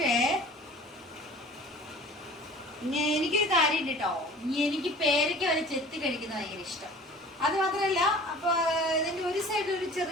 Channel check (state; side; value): normal; both; correlation 0.44